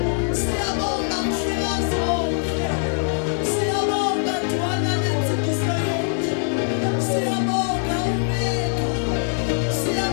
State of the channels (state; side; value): silent; right; digital silence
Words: siyabonga mhlekazi wonke siyabonga dwana lenzikiso yethu siyabonga umeka